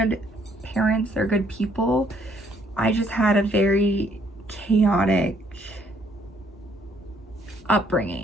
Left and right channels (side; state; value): both; normal; correlation 0.66